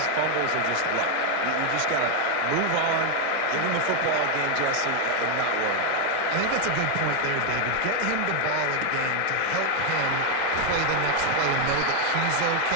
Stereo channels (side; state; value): both; different; correlation 0.01